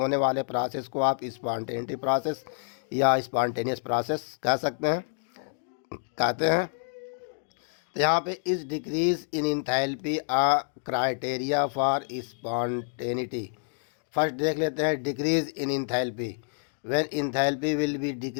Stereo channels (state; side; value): silent; right; 58 dB below the other